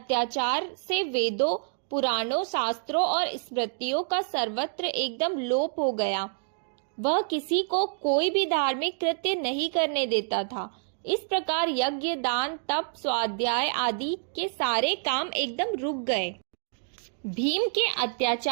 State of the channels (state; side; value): silent; left; digital silence